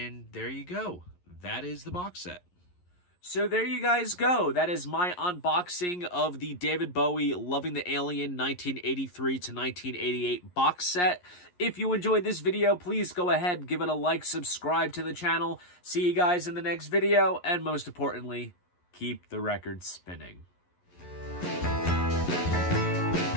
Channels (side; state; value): right; late; 11 ms